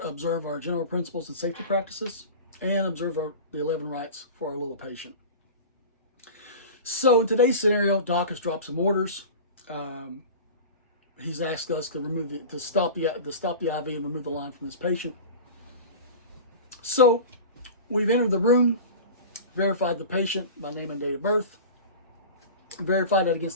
observe our general principles and safety practices and observe the 11 rights for our little patient. So in today's scenario, Doc has dropped some orders. He's asked us to stop the IV and remove the line from this patient. So we've entered the room, verified the patient by name and date of birth, verified that against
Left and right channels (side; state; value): both; inverted; correlation -0.34